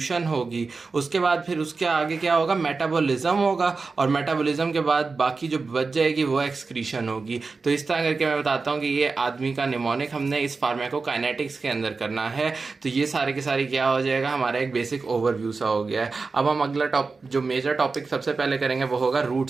होगी। उसके बाद फिर उसके आगे क्या होगा, मेटाबॉलिज्म होगा, और मेटाबॉलिज्म के बाद बाकी जो बच जाएगी वो एक्सक्रीशन होगी। तो इस तरह करके मैं बताता हूँ कि ये आदमी का निमोनिक हमने इस फार्माकोकाइनेटिक्स के अंदर करना है। तो ये सारे के सारे क्या हो जाएगा, हमारा एक बेसिक ओवरव्यू सा हो गया है। अब हम अगला जो मेजर टॉपिक सबसे पहले करेंगे वो होगा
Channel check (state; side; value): quieter; left; 4.3 dB